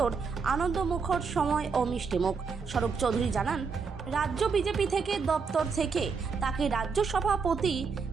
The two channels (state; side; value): quieter; left; 5.3 dB